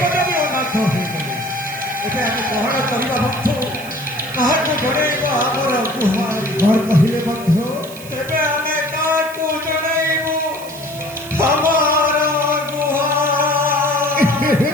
ବି ଅନାଥ ହୋଇଗଲେ। ଏବେ ଆମେ ଗ୍ରହଣ କରିବା ବନ୍ଧୁ, କାହାକୁ ଜଣେଇବ ଆମର ଗୁହାରି? କଣ କହିଲେ ବନ୍ଧୁ? ଏବେ ଆମେ କାହାକୁ ଜଣେଇବୁ ଆମର ଗୁହାରି?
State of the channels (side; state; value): right; noise; hiss, 16 dB below the sound